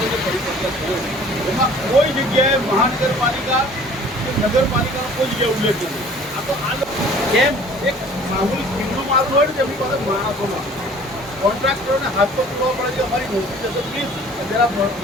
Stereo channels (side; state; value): both; normal; correlation 0.50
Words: ने परिपत्र कोई जगह महानगरपालिका नगरपालिका कोई जगह उल्लेख नहीं। आ तो केम एक मामूली खींचो मारू हो जमी पास माणसों कॉन्ट्राक्टरों ने हाथ पर पूरा पड़े कि हमारी नौकरी जैसे प्लीज जरा